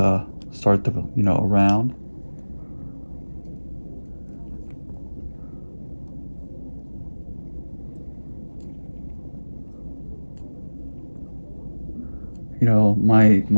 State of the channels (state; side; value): inverted; both; correlation -1.00